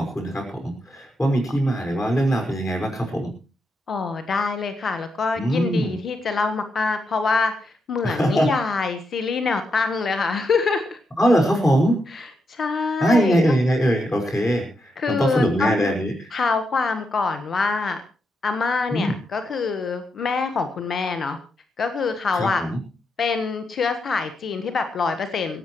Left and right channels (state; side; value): normal; both; correlation 0.83